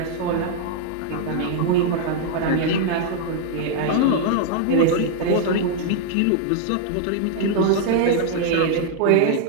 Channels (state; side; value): different; both; correlation 0.00